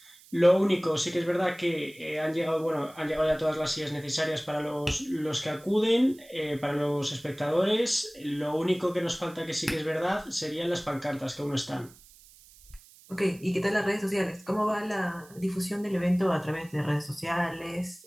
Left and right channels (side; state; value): right; noise; hiss, 24 dB below the sound